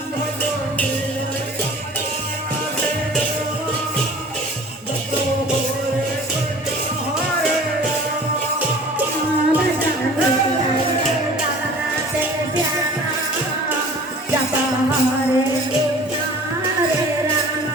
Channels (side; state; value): both; normal; correlation 0.45